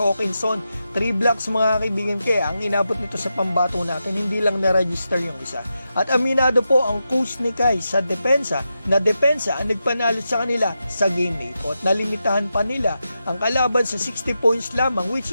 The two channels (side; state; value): both; inverted; correlation -0.88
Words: 3 blocks mga kaibigan, kaya ang inabot nito sa pambato natin, hindi lang na-register yung isa. At aminado po ang coach ni Kai sa depensa ang nagpanalo sa kanila sa game na ito. At nalimitahan pa nila ang kalaban sa 60 points lamang, which